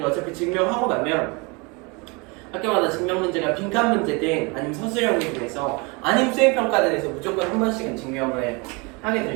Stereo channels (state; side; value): quieter; left; 28.9 dB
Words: 어차피 증명하고 나면 학교마다 증명 문제가 빈칸 문제든 아니면 서술형이 돼서 아니면 수행평가단에서 무조건 한 번씩은 증명을 하게